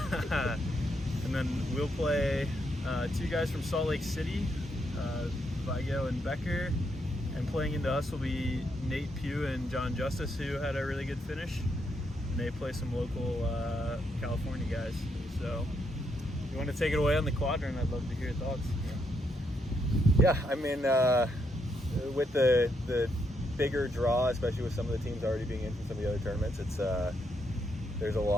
and then we'll play two guys from Salt Lake City, Vigo and Becker, and playing into us will be Nate Pugh and John Justice, who had a really good finish, and they play some local California guys. So if you want to take it away on the quadrant, I'd love to hear your thoughts. Yeah, I mean, with the bigger draw, especially with some of the teams already being in from some of the other tournaments, it's there's a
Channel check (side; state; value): both; normal; correlation 0.78